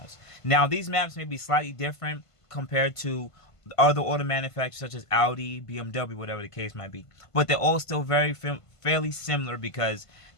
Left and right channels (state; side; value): late; right; 1.5 ms